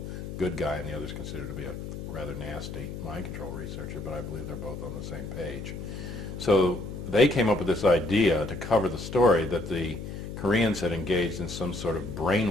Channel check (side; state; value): left; noise; hum, 8 dB below the sound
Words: good guy and the other's considered to be a rather nasty mind control researcher, but I believe they're both on the same page. So they came up with this idea to cover the story that the Koreans had engaged in some sort of